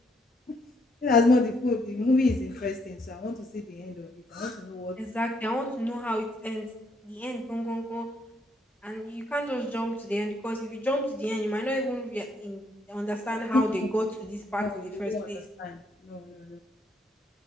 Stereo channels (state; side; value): normal; both; correlation 0.71